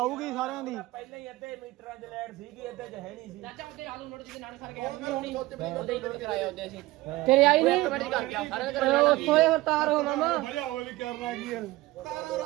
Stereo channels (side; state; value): left; quieter; 18.8 dB